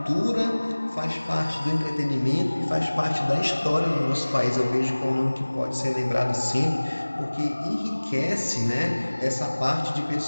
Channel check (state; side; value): inverted; both; correlation -1.00